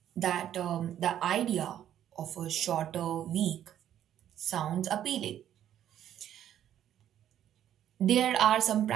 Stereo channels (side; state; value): left; quieter; 10.9 dB